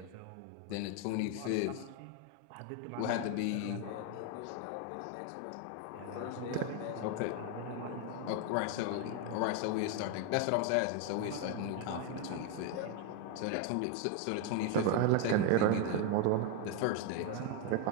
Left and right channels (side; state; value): both; different; correlation 0.01